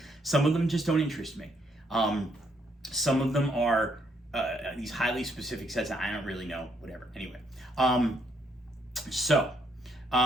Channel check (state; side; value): normal; both; correlation 0.72